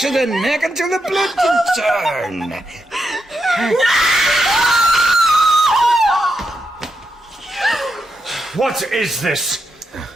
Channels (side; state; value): both; normal; correlation 0.84